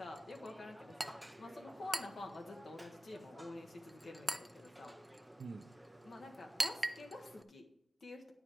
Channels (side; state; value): both; normal; correlation 0.96